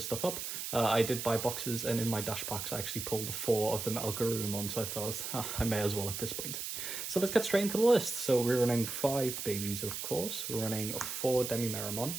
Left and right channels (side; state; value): right; noise; hiss, 5 dB below the sound